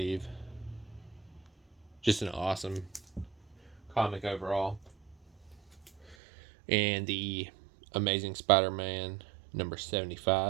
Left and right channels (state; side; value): drops out; left; at 6.2 s